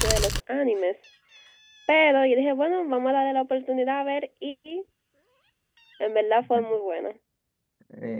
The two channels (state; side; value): identical; both; correlation 1.00